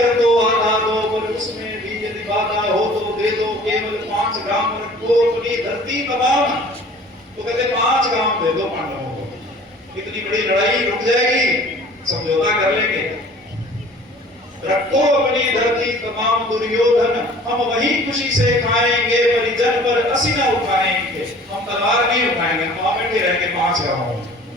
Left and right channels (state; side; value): normal; both; correlation 0.48